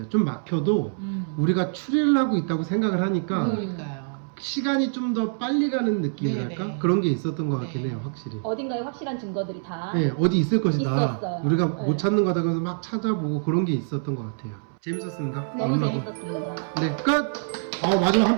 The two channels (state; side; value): silent; left; 62 dB below the other